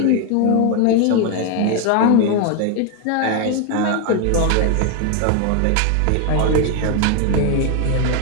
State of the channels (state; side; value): different; both; correlation 0.01